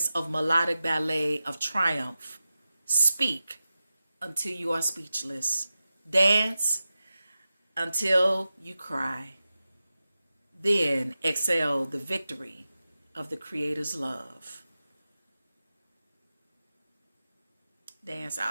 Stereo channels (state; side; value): inverted; both; correlation -0.93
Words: of melodic ballet of triumph. Speak until you are speechless. Dance until you cry. Then exhale the victory of the Creator's love. Dance